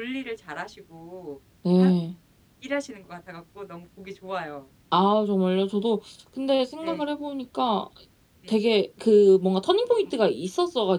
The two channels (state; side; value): identical; both; correlation 1.00